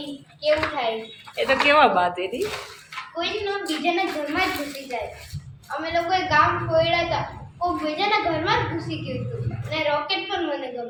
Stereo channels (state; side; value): identical; both; correlation 1.00